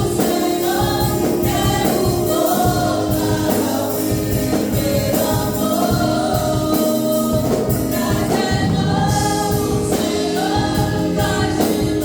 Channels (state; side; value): identical; both; correlation 1.00